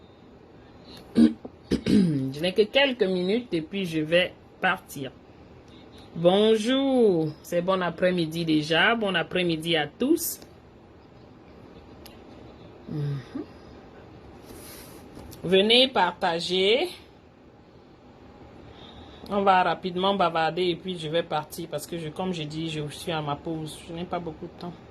Je n'ai que quelques minutes et puis je vais partir. Bonjour, c'est bon après-midi déjà. Bon après-midi à tous. Venez partager. On va rapidement bavarder et puis je vais partir parce que comme je dis, je suis à ma pause. Je n'ai pas beaucoup de temps.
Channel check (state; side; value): identical; both; correlation 1.00